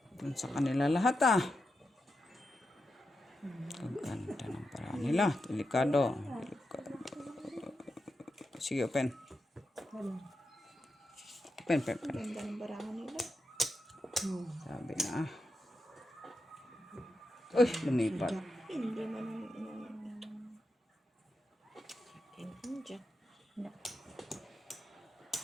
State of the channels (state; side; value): normal; both; correlation 0.87